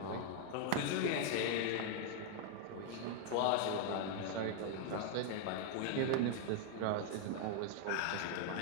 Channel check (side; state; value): both; different; correlation 0.00